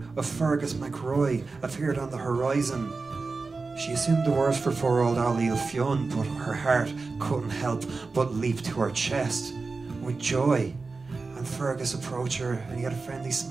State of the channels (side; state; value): left; quieter; 4.0 dB